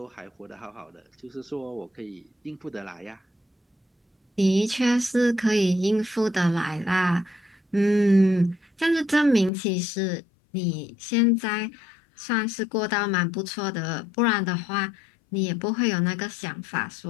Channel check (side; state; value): right; drops out; at 9.5 s